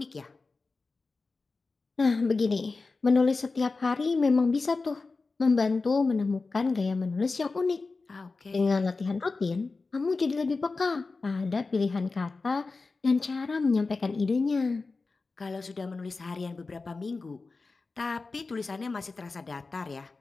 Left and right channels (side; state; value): right; quieter; 3.9 dB